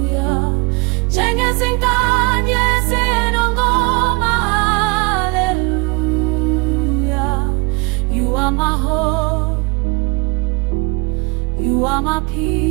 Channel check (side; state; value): left; quieter; 27.8 dB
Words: Zinganye zinongoma, hallelujah. You are my hope, you are my